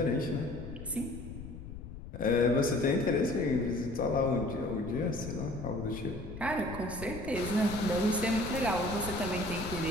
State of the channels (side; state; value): left; noise; rumble, 11 dB below the sound